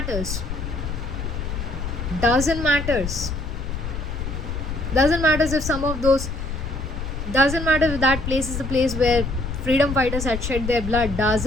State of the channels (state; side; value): noise; left; rumble, 5 dB below the sound